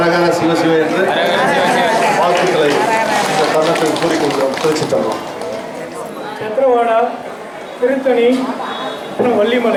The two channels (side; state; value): both; identical; correlation 1.00